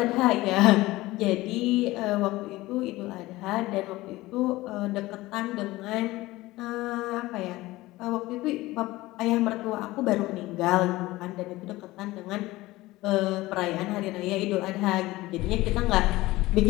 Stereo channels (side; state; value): right; quieter; 18.7 dB